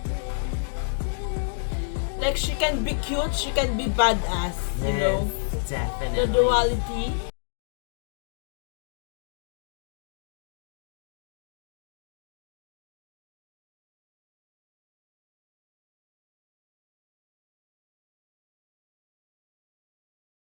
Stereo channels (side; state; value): right; silent; digital silence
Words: Like, she can be cute, she can be badass, you know? Yes, The definitely. duality.